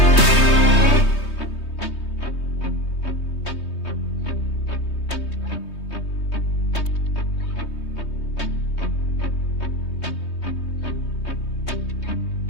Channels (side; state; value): right; late; 3.2 ms